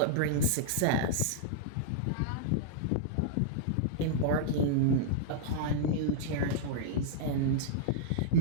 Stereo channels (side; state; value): both; different; correlation -0.02